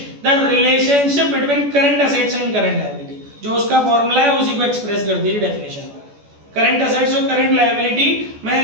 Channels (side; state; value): left; late; 14 ms